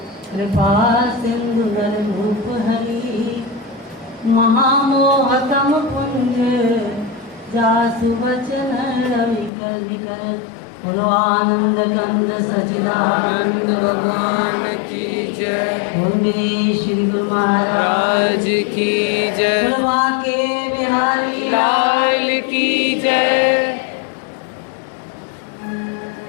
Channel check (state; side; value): drops out; right; at 9.5 s